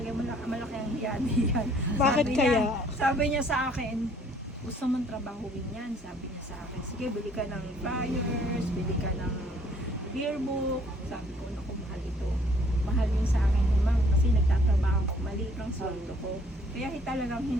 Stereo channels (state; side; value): normal; both; correlation 0.60